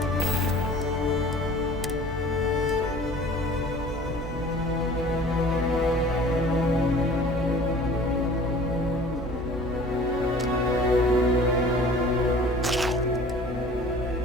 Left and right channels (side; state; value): both; normal; correlation 0.46